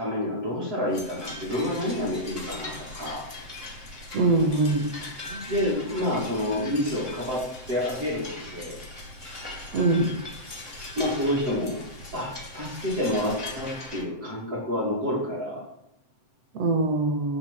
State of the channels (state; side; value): late; left; 7.8 ms